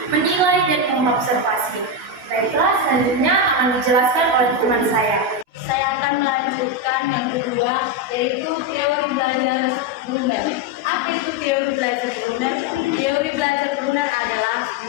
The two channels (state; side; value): late; left; 16 ms